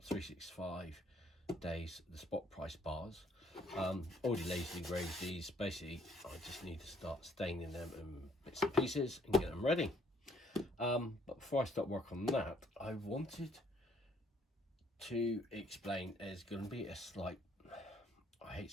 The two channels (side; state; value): both; normal; correlation 0.66